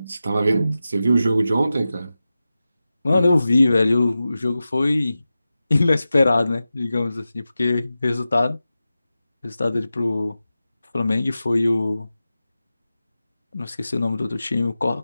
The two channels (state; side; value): inverted; both; correlation -0.93